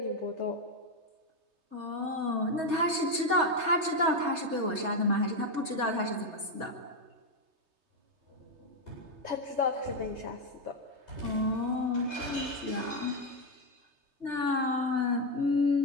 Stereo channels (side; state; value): left; late; 3.3 ms